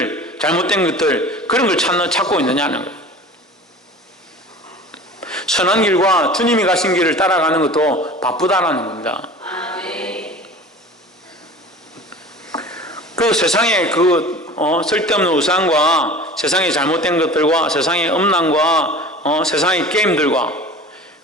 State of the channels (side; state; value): both; normal; correlation 0.39